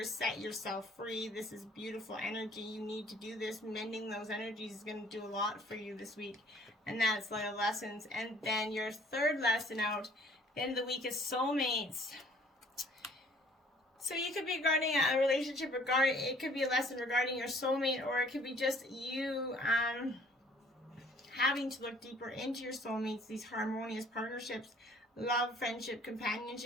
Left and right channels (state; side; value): normal; both; correlation 0.56